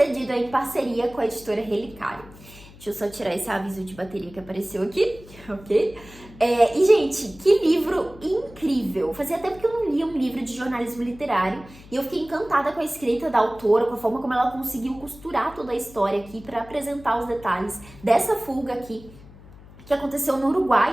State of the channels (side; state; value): left; noise; hum, 20 dB below the sound